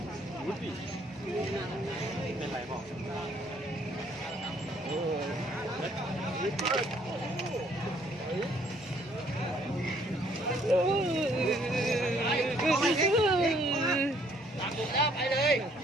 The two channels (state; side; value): normal; both; correlation 0.64